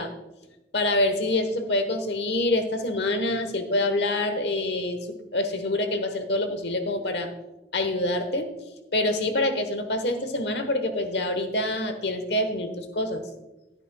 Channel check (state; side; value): normal; both; correlation 0.02